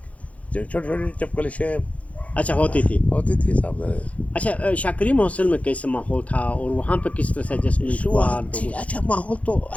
چھوٹی چھوٹی چپکلشیں اچھا ہوتی تھی صاحب. اچھا شاہ کریم ہاسٹل میں کیسا ماحول تھا اور وہاں پہ کس طرح سے ایڈجسٹمنٹ ہوا؟ اچھا ماحول تو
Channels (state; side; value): late; right; 0.066 ms